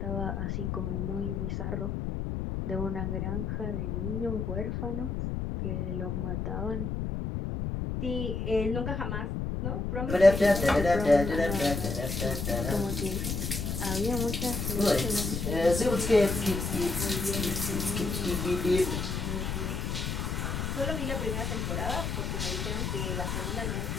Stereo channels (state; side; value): noise; left; rumble, 2 dB below the sound